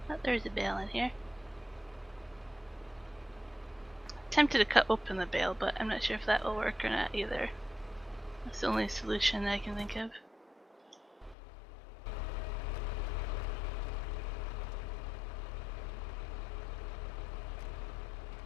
Oh, there's a bale in here. Tempted to cut open the bale, but I'm not sure if that will work or not either. That's the only solution I can think of.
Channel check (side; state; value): right; drops out; at 11.4 s